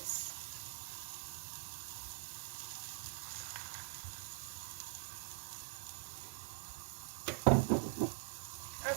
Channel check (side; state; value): left; silent; digital silence